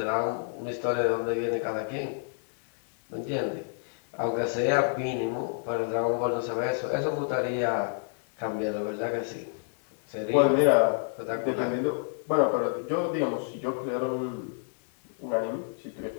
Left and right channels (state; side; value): silent; right; digital silence